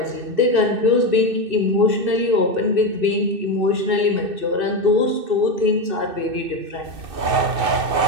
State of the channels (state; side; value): late; left; 2.6 ms